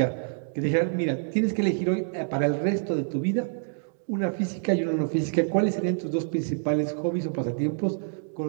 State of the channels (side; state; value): left; silent; digital silence